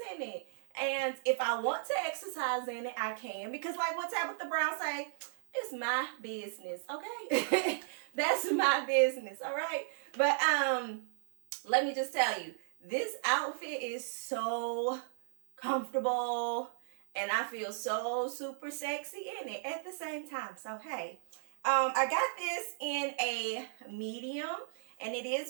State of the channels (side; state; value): left; silent; digital silence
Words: in it. And if I want to exercise in it, I can. Because like what Tabitha Brown say, it's my business, okay? That's my business, all right? But let me just tell you, this outfit is so comfortable and I feel so super sexy in it at the same time. So, hey, I got this in a medium and it